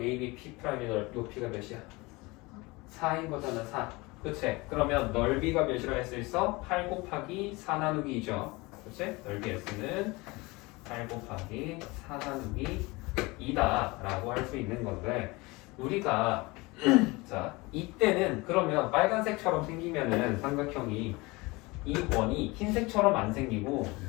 AB P'의 높이가 몇이야? 4인 거잖아. 4. 그치? 그러면 넓이가 몇이라 할 수 있어? 8 곱하기 4 나누기 2죠. 그치? 넓이 S는 8 곱하기 4 나누기 2다 라고 할 수 있는 건데 우리가 자 이때는 그러면 빨간색처럼 생기면은 삼각형이 이 원이 흰색처럼 안 생기고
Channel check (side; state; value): right; quieter; 23.8 dB